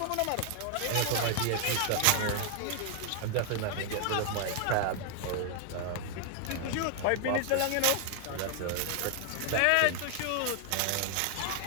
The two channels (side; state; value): both; different; correlation 0.00